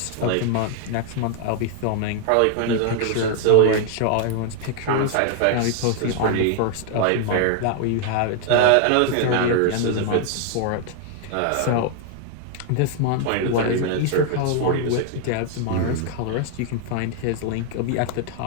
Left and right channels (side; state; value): both; different; correlation 0.00